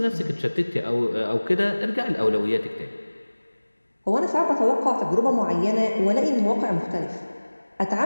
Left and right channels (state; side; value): inverted; both; correlation -1.00